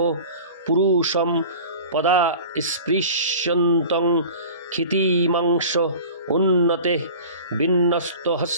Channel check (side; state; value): both; inverted; correlation -0.40